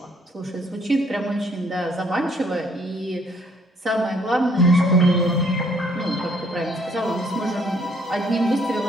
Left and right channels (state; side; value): normal; both; correlation 0.65